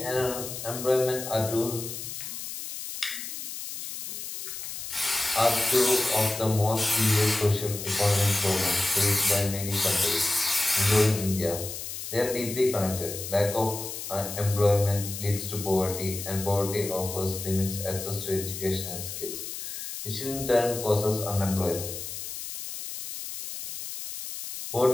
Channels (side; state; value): left; noise; hiss, 8 dB below the sound